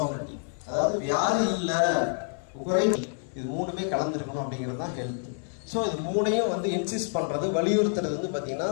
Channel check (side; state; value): right; silent; 56 dB below the other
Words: அதாவது வியாதி இல்லை, குறைவு, இது மூணுமே கலந்துருக்கணும் அப்படிங்கிறது தான் ஹெல்த். ஸோ இது மூணையும் வந்து இன்சிஸ்ட் பண்ணுறது, வலியுறுத்துறது வந்து பார்த்தீங்கன்னா